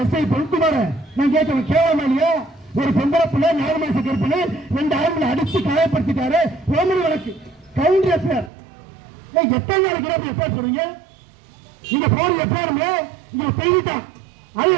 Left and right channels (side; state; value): left; drops out; at 8.5 s